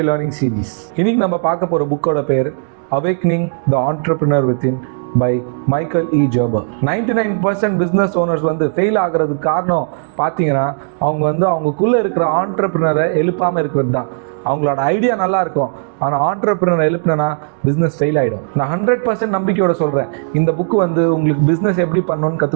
learning series. இன்னைக்கு நம்ம பார்க்க போற புக்கோட பேர் awakening the entrepreneur within by Michael E Gerber. 99% business owners fail ஆகுறதுக்கு காரணம் பார்த்தீங்கன்னா அவங்களுக்குள்ள இருக்கிற ஆண்டர்பிரினரை எழுப்பாம இருக்கிறது தான். அவங்களோட ஐடியா நல்லா இருக்கும், ஆனால் ஆண்டர்பிரினர் எழுப்புனா பிஸ்னஸ் ஃபெயில் ஆகிடும். நான் 100% நம்பிக்கையோட சொல்கிறேன், இந்த புக்கு உங்களுக்கு பிஸ்னஸ் எப்படி பண்ணணும்னு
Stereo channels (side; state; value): left; silent; digital silence